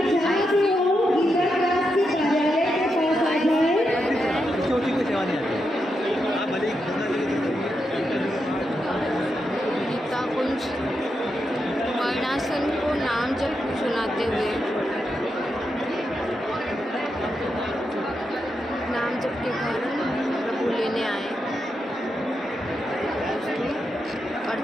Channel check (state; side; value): normal; both; correlation 0.85